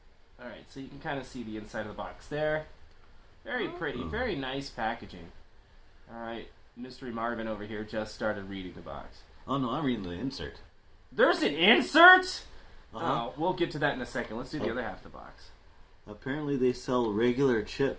Alright, so you can kind of see the inside of the box there. Very pretty, very nice packaging. Alright, Mystery Marvin over here just started reading the box. Oh no, I'm reading the insert. There's an insert?! Uh-huh. Oh, we'll get to that in a second. Let's do the other half of the box. Apparently they sell regular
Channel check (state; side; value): identical; both; correlation 1.00